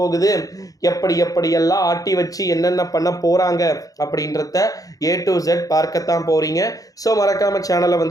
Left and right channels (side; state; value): right; late; 0.17 ms